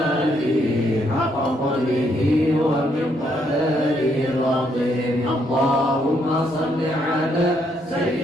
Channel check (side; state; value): both; normal; correlation 0.73